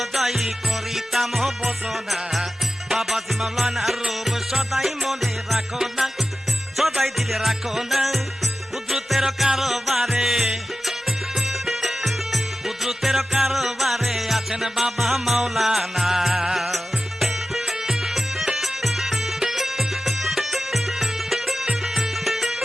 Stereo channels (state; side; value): normal; both; correlation 0.94